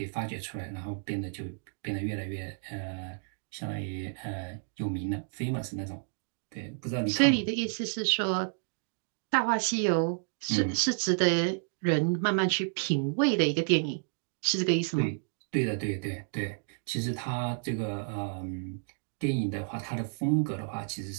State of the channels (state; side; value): silent; left; digital silence